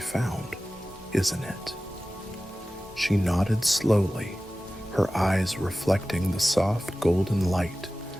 isn't it?" She nodded slowly, her eyes reflecting the soft golden light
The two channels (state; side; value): normal; both; correlation 0.96